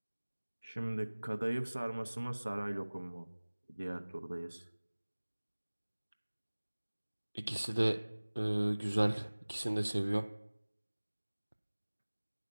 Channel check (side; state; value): both; inverted; correlation -1.00